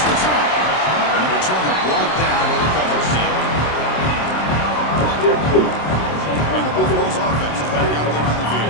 And the returner brought down by the coverage team. And the Buffaloes offense is back out there on the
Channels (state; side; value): late; right; 27 ms